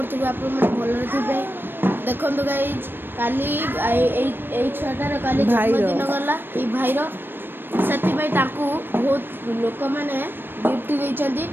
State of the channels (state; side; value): late; left; 0.097 ms